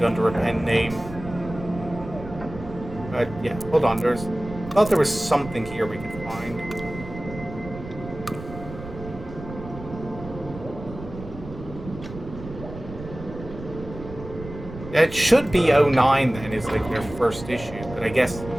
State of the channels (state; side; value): noise; right; rumble, 12 dB below the sound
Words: under a pen name. But yeah, hold on. I thought there was something here we could find. Yeah, it should be 09 then, is like their first issue, but I guess.